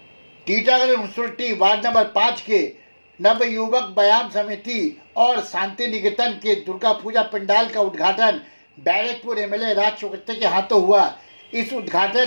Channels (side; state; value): both; inverted; correlation -1.00